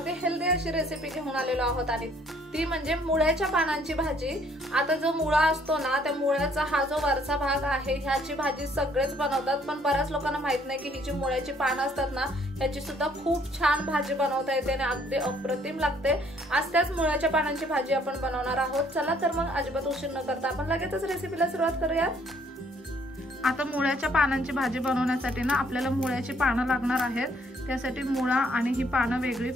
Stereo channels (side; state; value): both; normal; correlation 0.64